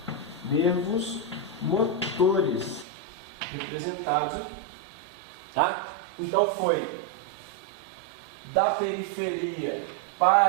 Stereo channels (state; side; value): drops out; left; at 2.9 s